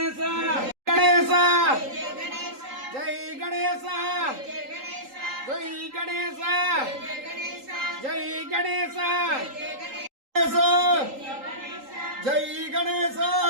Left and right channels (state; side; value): late; left; 3.8 ms